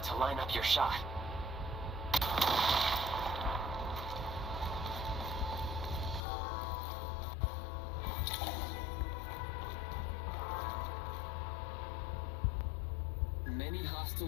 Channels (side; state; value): right; drops out; at 6.2 s